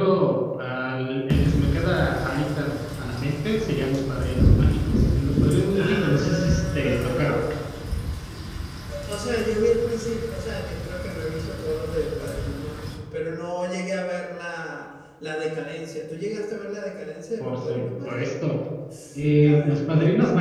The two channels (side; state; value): both; identical; correlation 1.00